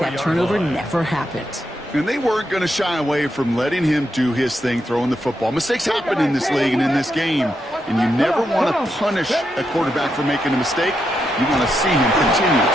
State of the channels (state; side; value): normal; both; correlation 0.83